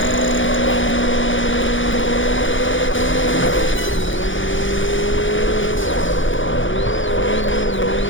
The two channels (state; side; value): late; right; 0.56 ms